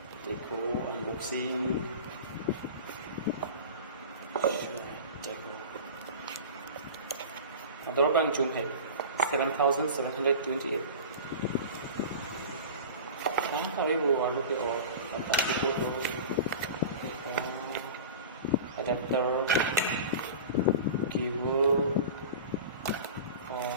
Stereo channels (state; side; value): inverted; both; correlation -0.35